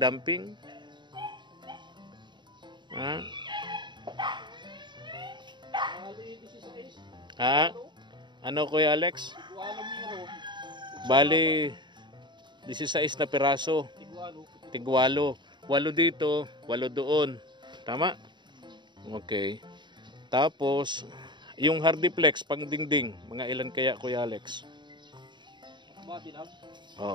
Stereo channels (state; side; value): late; left; 0.22 ms